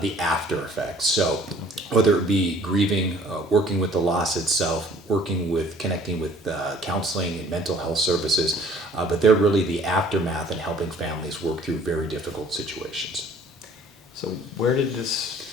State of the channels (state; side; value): normal; both; correlation 0.54